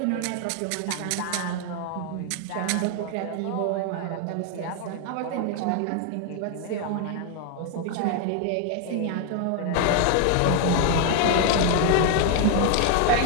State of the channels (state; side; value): different; both; correlation 0.00